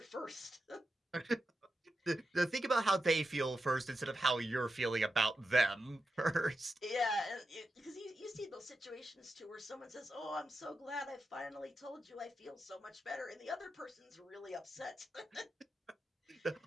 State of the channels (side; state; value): both; normal; correlation 0.88